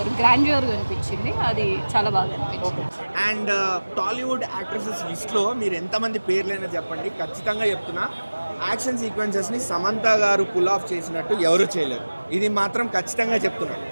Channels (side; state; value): both; inverted; correlation -1.00